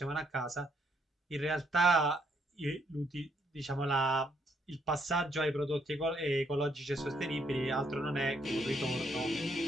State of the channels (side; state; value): both; normal; correlation 0.72